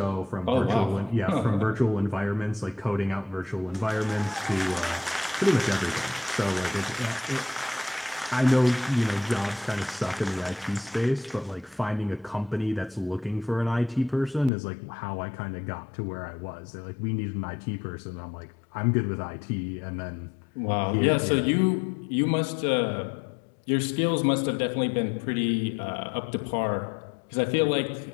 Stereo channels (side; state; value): right; drops out; at 14.5 s